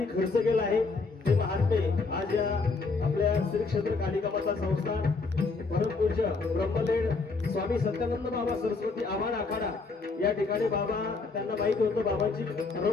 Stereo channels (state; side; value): quieter; right; 4.1 dB